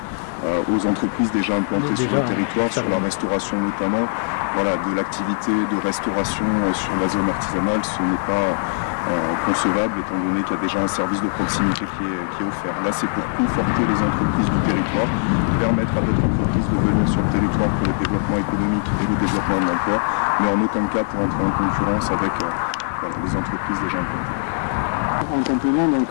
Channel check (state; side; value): silent; right; digital silence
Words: aux entreprises déjà implantées sur le territoire, sur la restauration notamment. Voilà, de l'activité de restauration sur la zone artisanale, ce n'est pas concevable étant donné qu'il y a déjà un service de proximité qui est offert. Là, c'est pour conforter les entreprises du territoire, permettre à d'autres entreprises de venir sur le territoire pour le développement économique et le développement de l'emploi, mais en aucun cas pour entrer en concurrence avec les entreprises déjà implantées. En complément, donc,